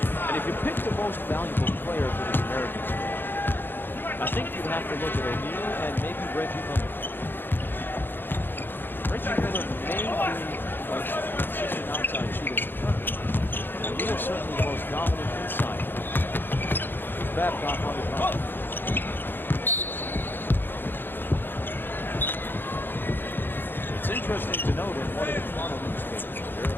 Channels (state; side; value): late; right; 0.098 ms